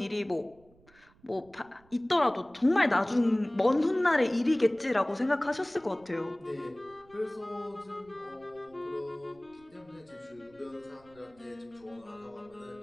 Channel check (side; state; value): right; noise; rumble, 29 dB below the sound